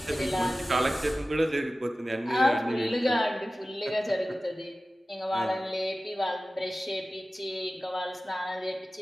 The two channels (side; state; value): both; normal; correlation 0.96